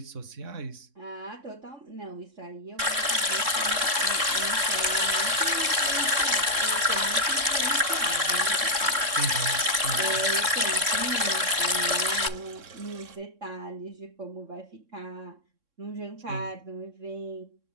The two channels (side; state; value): left; late; 3.6 ms